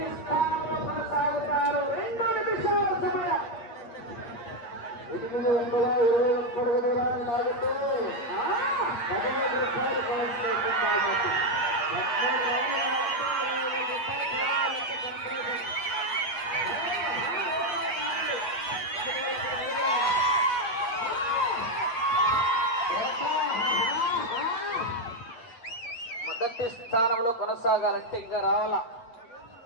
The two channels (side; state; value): right; late; 8.4 ms